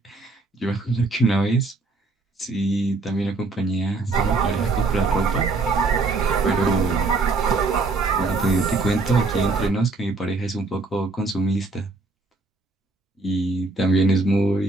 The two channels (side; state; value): left; quieter; 3.5 dB